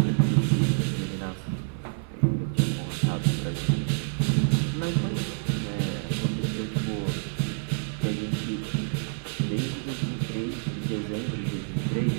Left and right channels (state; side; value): silent; left; 58 dB below the other